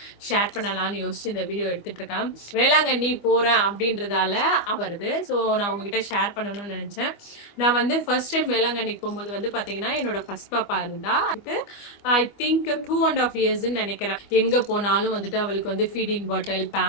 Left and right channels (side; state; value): right; late; 25 ms